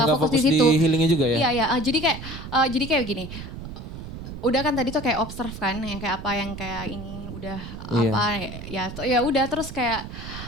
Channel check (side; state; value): right; noise; rumble, 10 dB below the sound